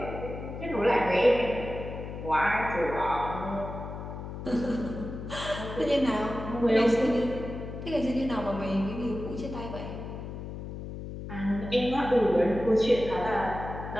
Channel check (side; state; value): left; noise; hum, 8 dB below the sound